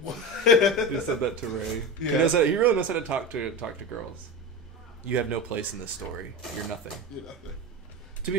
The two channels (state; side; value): normal; both; correlation 0.24